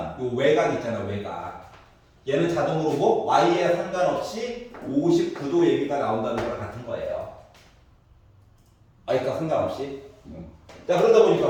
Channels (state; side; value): identical; both; correlation 1.00